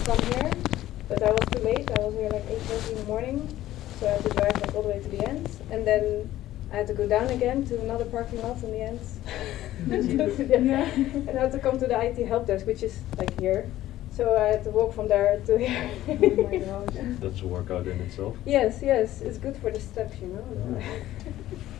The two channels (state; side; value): quieter; right; 14.3 dB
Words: come here, but I was too late. I was here like 8:30 in the morning, so I had to drive like all the way to the end. And then I had to go down again to another parking lot in the end. Yeah. And I had to come to the IT help desk, which is like here. So I had to walk from there to here. Oh my gosh. That's a workout in itself. Yes, it's good for the steps, you know.